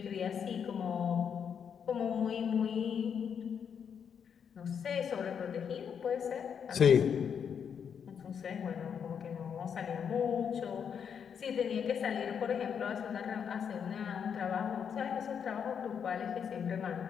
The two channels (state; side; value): quieter; right; 7.4 dB